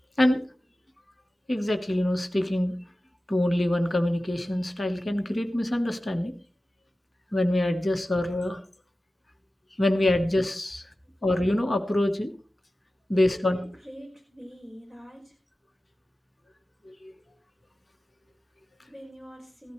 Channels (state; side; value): normal; both; correlation 0.95